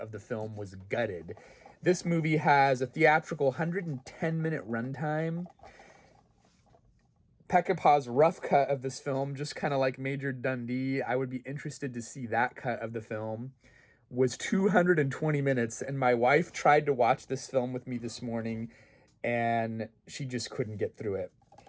the film was gutted. This movie has a theatrical 110-minute runtime. Peckinpah's rough cut of this film, just kind of like Major Dundee, I would be interested to see that cut of the film, was 220 minutes. And my wife tried to watch this film with me this morning, and she just couldn't get through it.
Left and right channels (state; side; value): identical; both; correlation 1.00